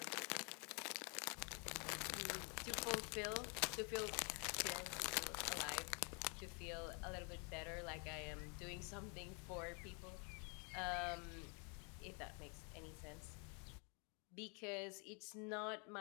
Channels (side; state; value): right; quieter; 33.9 dB